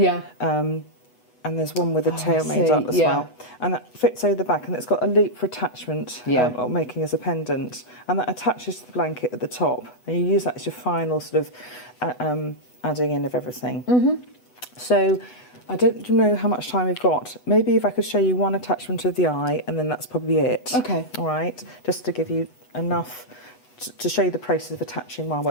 And there's one with the tail made up as well. And that fits over the back, and it's got a loop for attachment, or making as a pendant. And that attaches to the blanket at the top. And you use that as your final sort of adding in of everything. So I don't know how much time we've got. Maybe if I could show you one attachment of the eye, and then that's probably it. Okay. All right. Just to give you enough to show you the process of attaching wire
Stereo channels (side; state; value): right; late; 8.1 ms